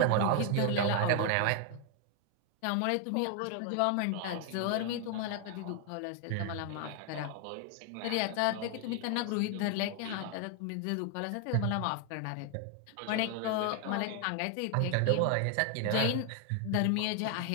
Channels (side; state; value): both; different; correlation 0.01